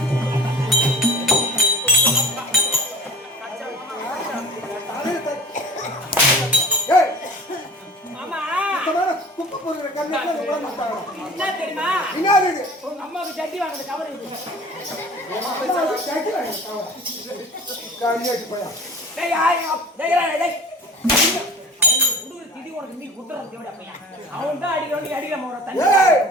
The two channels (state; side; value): normal; both; correlation 0.42